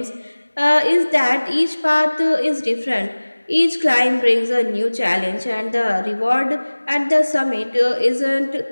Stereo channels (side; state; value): both; inverted; correlation -1.00